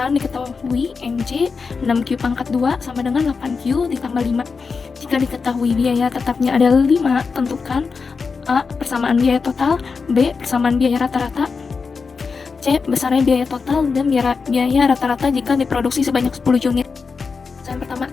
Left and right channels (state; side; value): quieter; right; 5.0 dB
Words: diketahui MC 6Q pangkat 2 sama dengan 8Q ditambah 5. Jika diketahui biaya tetapnya adalah 5, tentukan A. Persamaan biaya total, B. Persamaan biaya rata-rata, C. Besarnya biaya total dan biaya rata-rata jika diproduksi sebanyak 10 unit. Yang pertama,